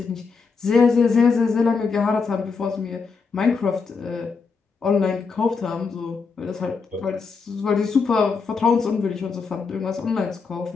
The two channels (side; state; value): right; quieter; 5.0 dB